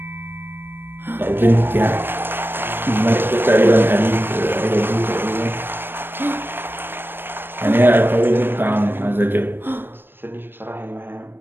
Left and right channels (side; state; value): left; late; 0.099 ms